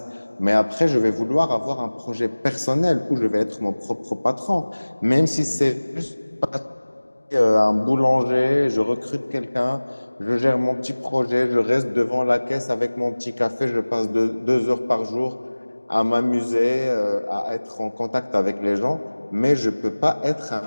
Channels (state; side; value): inverted; both; correlation -1.00